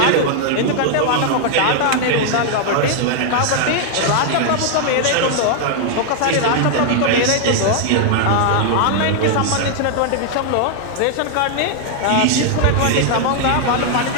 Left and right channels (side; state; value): both; different; correlation 0.00